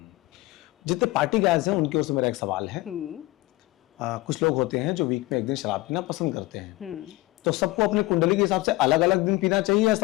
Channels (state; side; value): quieter; right; 20.0 dB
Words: जितने पार्टी गायज हैं उनकी ओर से मेरा एक सवाल है। कुछ लोग होते हैं जो वीक में एक दिन शराब पीना पसंद करते हैं, तो सबको अपनी कुंडली के हिसाब से अलग अलग दिन पीना चाहिए या